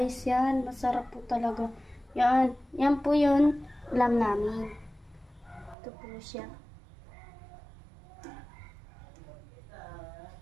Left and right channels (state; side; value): drops out; left; at 5.8 s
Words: yan, masarap po talaga. Yan po yun, ulam namin. Ito po siya.